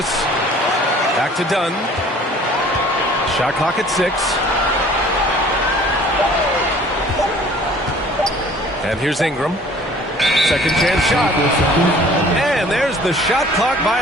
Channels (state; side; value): normal; both; correlation 0.51